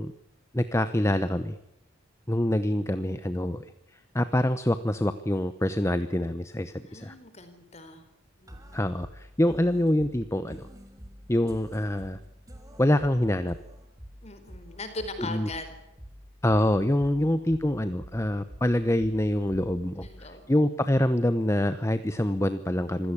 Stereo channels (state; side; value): normal; both; correlation 0.90